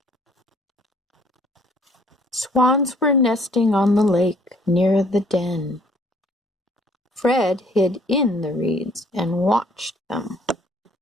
Swans were nesting on the lake near the den. Fred hid in the reeds and watched them.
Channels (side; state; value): both; normal; correlation 0.60